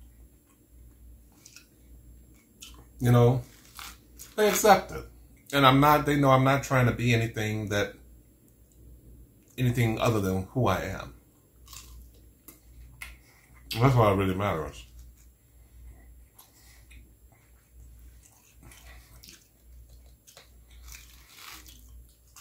You know, they accept it. And they know I'm not trying to be anything other than who I am. And that's what really matters.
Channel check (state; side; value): identical; both; correlation 1.00